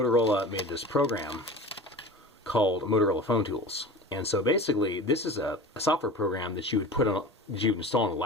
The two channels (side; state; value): both; normal; correlation 0.35